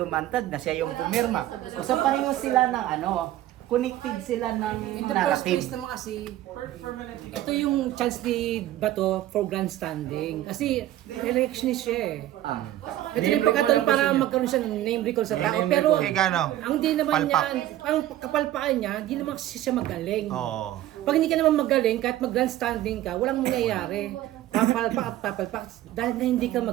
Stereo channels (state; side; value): quieter; left; 13.9 dB